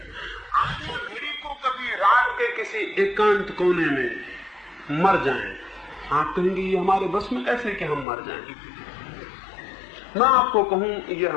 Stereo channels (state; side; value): drops out; right; at 8.1 s